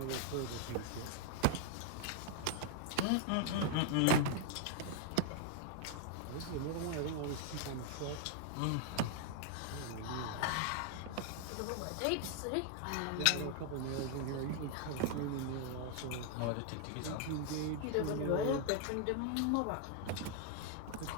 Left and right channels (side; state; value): both; different; correlation 0.00